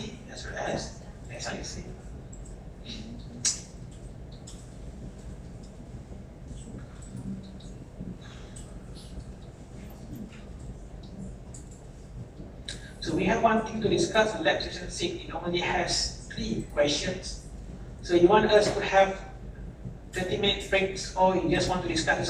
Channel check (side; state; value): both; identical; correlation 1.00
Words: as well as SIC. So we have one thing to discuss in lab session 6. It only has 3 questions. So you want us to have 30-minute breaks, or you just want to discuss this